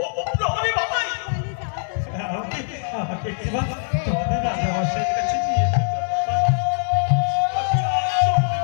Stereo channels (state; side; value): silent; right; 60 dB below the other